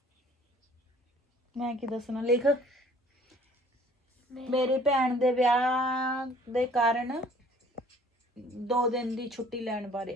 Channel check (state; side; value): normal; both; correlation 0.54